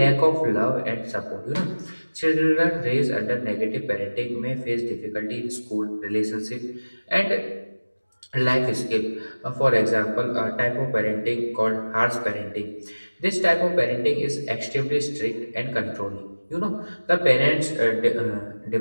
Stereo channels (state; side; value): inverted; both; correlation -1.00